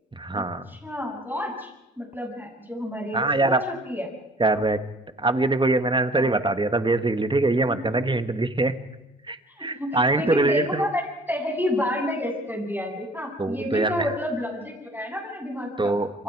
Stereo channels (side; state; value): both; normal; correlation 0.52